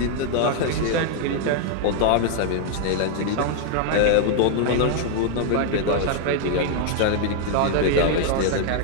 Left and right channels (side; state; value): both; different; correlation 0.00